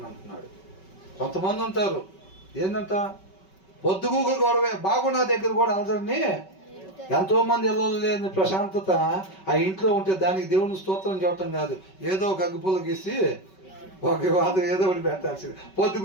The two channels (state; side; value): late; right; 5.3 ms